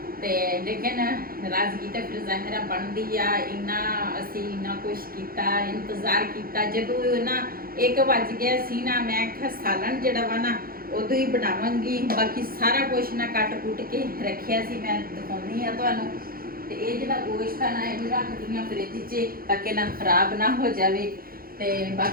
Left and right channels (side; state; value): left; late; 0.42 ms